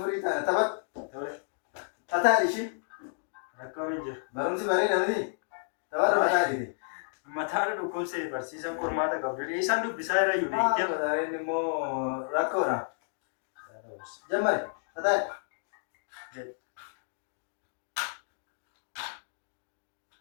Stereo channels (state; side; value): silent; right; digital silence